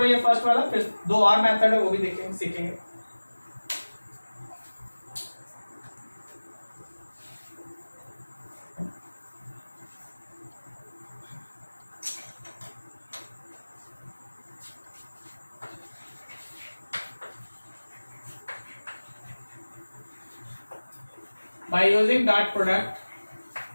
ये फर्स्ट वाला, फिर दो और मेथड है वो भी देखेंगे, सीखेंगे। By using dot product,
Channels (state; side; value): inverted; both; correlation -1.00